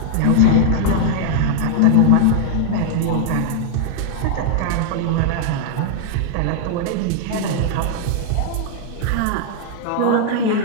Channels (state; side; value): different; both; correlation -0.01